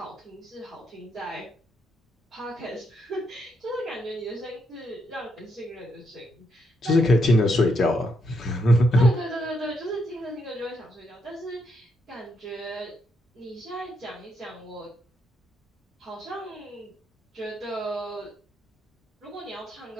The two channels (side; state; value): both; normal; correlation 0.78